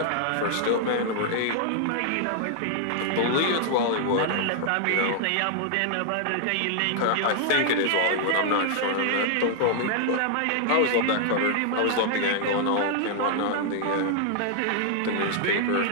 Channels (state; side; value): different; both; correlation 0.00